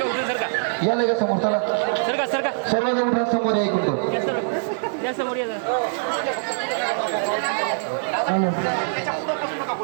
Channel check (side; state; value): left; silent; digital silence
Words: या लगेच समोर. चला सर्वजण उठा समोर या, 1 मिनिट.